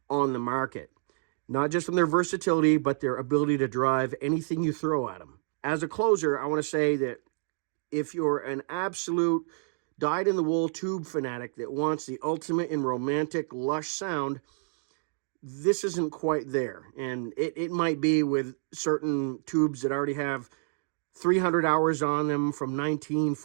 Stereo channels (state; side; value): silent; left; digital silence